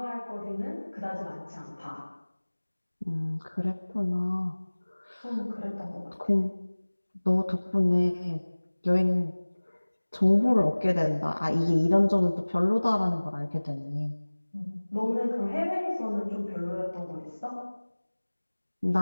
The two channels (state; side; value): inverted; both; correlation -1.00